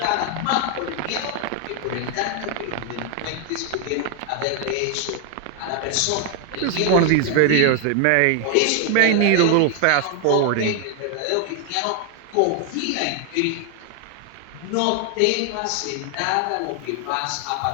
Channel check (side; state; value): both; different; correlation 0.00